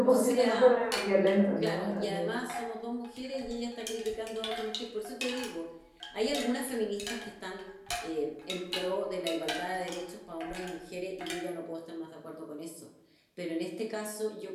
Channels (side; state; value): both; identical; correlation 1.00